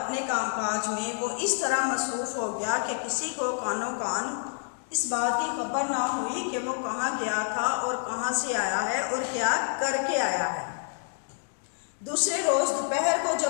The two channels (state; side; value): silent; right; digital silence